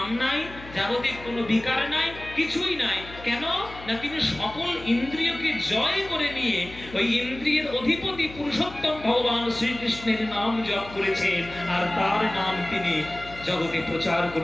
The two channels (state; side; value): noise; left; hum, 16 dB below the sound